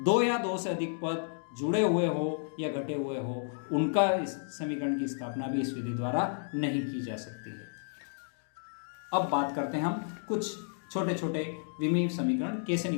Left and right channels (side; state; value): right; silent; digital silence